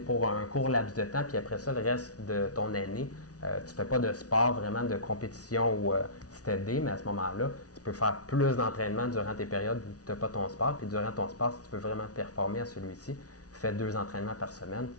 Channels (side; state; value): right; late; 0.68 ms